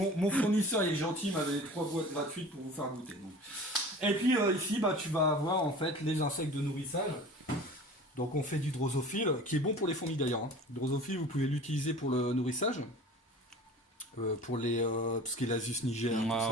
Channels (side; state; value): both; normal; correlation 0.41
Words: mon fournisseur, il est gentil, il m'avait 3 boîtes gratuites pour vous faire goûter. Donc. Et puis, ici, tu vas avoir, en fait, les insectes de nourrissage. Donc on fait du drosophile, qui est bon pour les fourmis d'ailleurs. Le drosophile, vous pouvez l'utiliser pour le nourrissage, pour les tout ce qui est l'Asus niger,